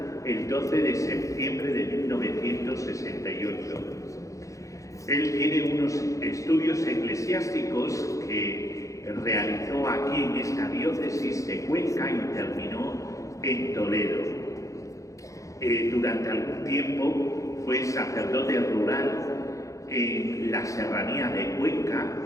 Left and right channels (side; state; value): right; late; 0.15 ms